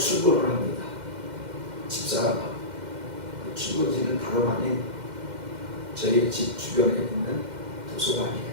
합니다. 집사람 출근지는 다름 아닌 저희 집 주변에 있는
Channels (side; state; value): left; late; 2.1 ms